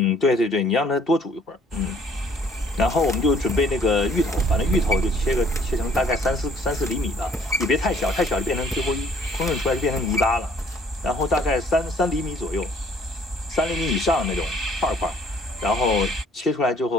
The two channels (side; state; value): both; normal; correlation 0.60